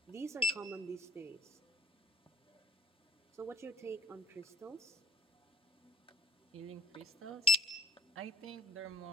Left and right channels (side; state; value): both; normal; correlation 0.50